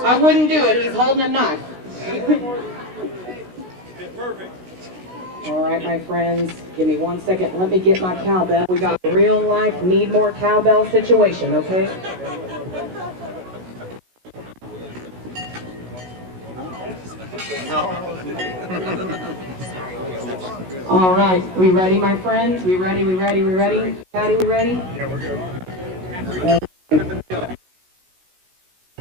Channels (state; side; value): late; left; 16 ms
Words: I wouldn't do it. He's holding a knife. Perfect. All right, my friends, give me 1 second. Let me get my cowbell. We got a real life need more cowbell situation, okay? All right, we ready, my friends? We ready? Patty, we ready? Yeah, we're good.